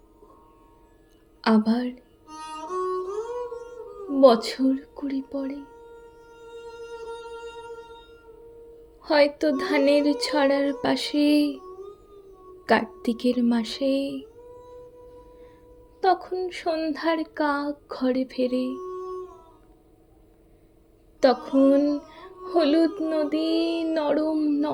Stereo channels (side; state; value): both; identical; correlation 1.00